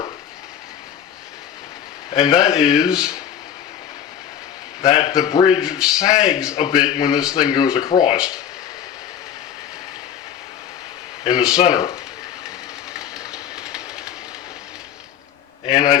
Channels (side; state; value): right; quieter; 9.2 dB